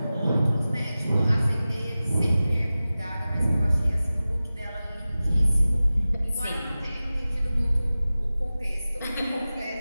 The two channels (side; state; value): both; inverted; correlation -0.96